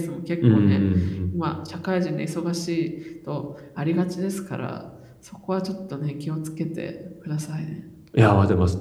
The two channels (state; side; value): identical; both; correlation 1.00